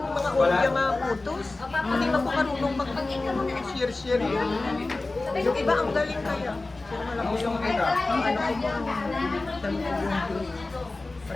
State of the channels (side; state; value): right; quieter; 3.2 dB